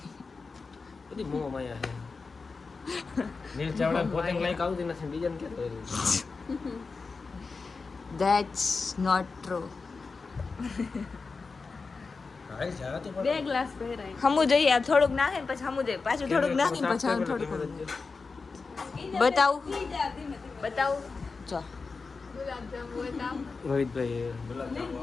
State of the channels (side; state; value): right; quieter; 4.4 dB